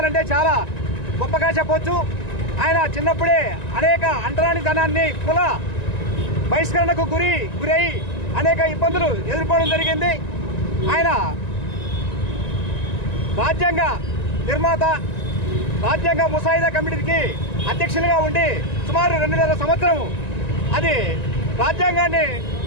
చాలా గొప్పగా చెప్పవచ్చు. ఆయన చిన్నప్పుడే అనేక అంటరానితనాన్ని కుల బహిష్కరణకు గురై అనేక ఇబ్బందులు ఎదుర్కోవడం జరిగింది. ఆయన రాజ్యాంగ నిర్మాత, రాజ్యాంగ ముసాయిదా కమిటీకి అధ్యక్షులుగా ఉండి సుమారు 2.5 సంవత్సరం అది రాజ్యాంగాన్ని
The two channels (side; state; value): right; late; 1.9 ms